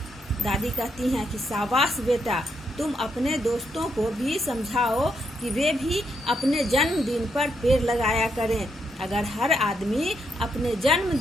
दादी कहती हैं कि शाबाश बेटा, तुम अपने दोस्तों को भी समझाओ कि वे भी अपने जन्मदिन पर पेड़ लगाया करें। अगर हर आदमी अपने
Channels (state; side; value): normal; both; correlation 0.79